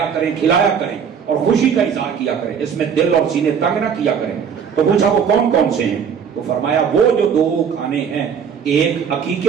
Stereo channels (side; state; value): left; quieter; 7.2 dB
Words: کریں, کھلایا کریں اور خوشی کا اظہار کیا کریں. اس میں دل اور سینے تنگ نہ کیا کریں. تو پوچھا وہ کون کون سے ہیں؟ تو فرمایا وہ جو 2 کھانے ہیں, ایک